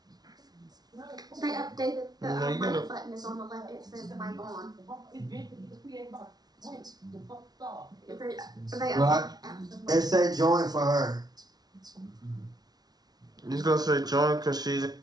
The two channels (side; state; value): left; late; 0.19 ms